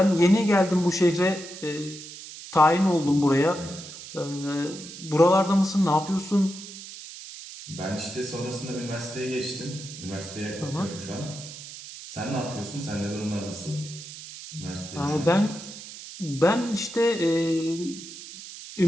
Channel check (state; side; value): noise; right; hiss, 13 dB below the sound